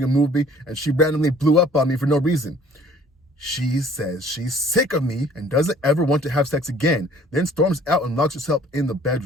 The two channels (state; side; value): normal; both; correlation 0.54